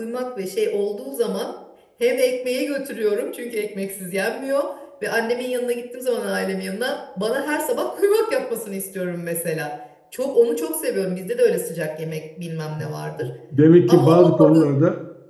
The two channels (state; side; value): identical; both; correlation 1.00